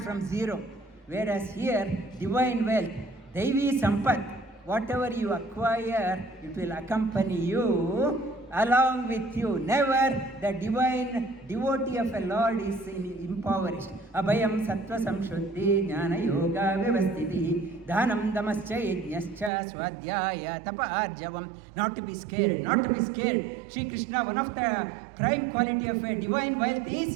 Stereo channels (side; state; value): left; drops out; at 19.5 s